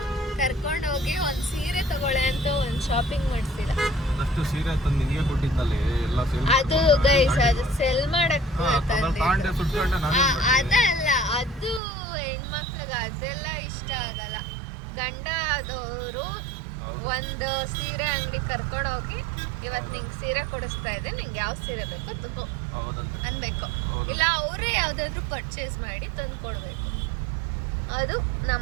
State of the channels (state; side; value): drops out; left; at 11.8 s